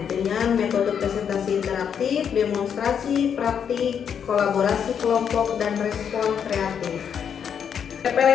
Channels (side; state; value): right; quieter; 7.8 dB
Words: dengan metode presentasi interaktif, demonstrasi, praktik, kolaborasi kelompok, dan respon kreatif.